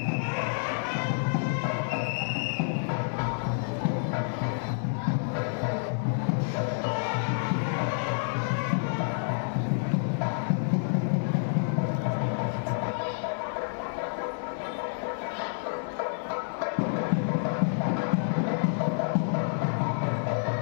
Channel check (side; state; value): right; silent; digital silence